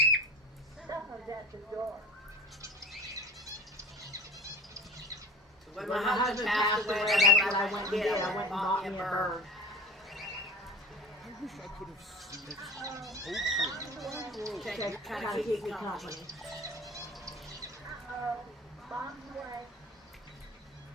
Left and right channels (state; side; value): normal; both; correlation 0.37